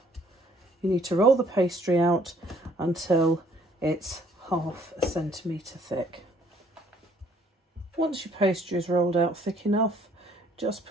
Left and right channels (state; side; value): normal; both; correlation 0.62